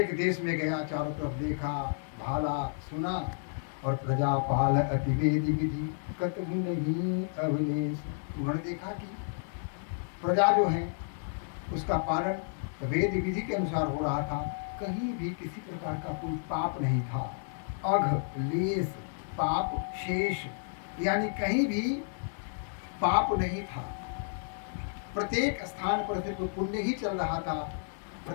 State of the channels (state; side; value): silent; right; digital silence